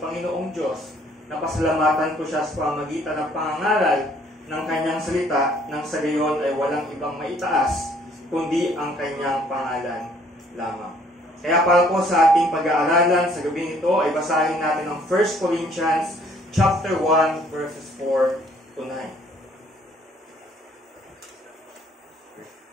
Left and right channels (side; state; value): both; normal; correlation 0.61